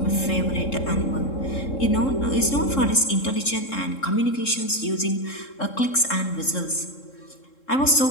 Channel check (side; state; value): right; late; 3.7 ms